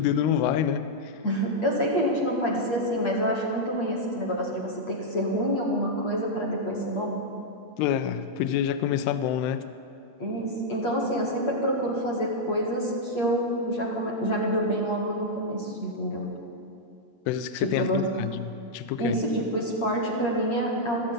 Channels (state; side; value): late; right; 8.5 ms